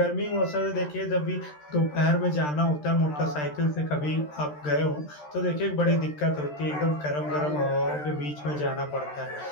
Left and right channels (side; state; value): right; late; 13 ms